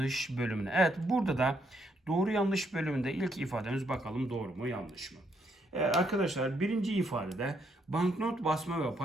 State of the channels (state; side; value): normal; both; correlation 0.74